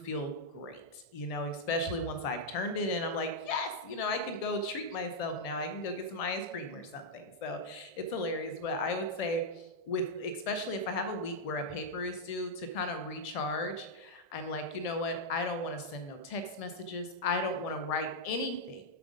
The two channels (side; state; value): right; late; 1.7 ms